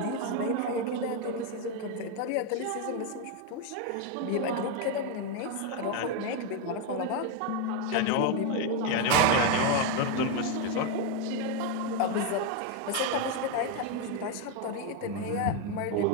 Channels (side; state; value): both; different; correlation 0.02